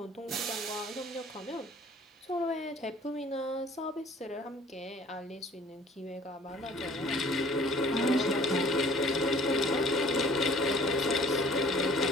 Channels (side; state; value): both; normal; correlation 0.52